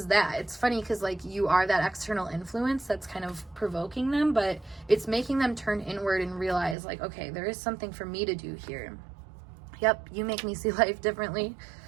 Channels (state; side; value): drops out; left; at 6.8 s